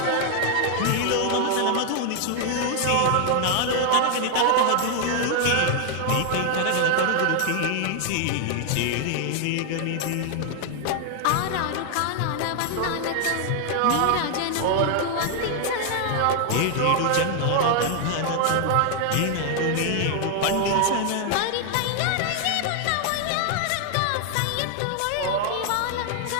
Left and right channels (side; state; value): both; different; correlation 0.00